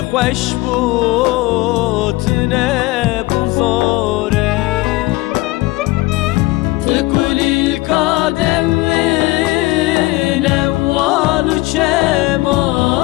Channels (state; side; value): quieter; right; 20.7 dB